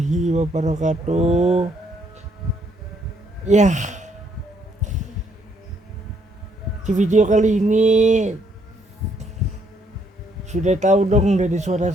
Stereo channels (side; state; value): both; normal; correlation 0.70